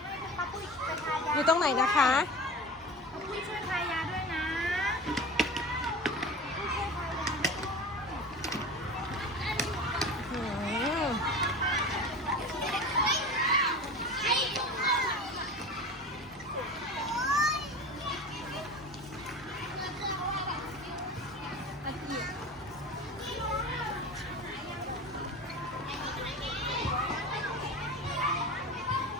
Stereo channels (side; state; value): both; normal; correlation 0.33